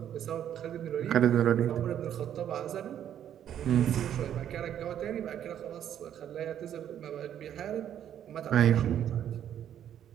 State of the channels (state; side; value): quieter; left; 10.1 dB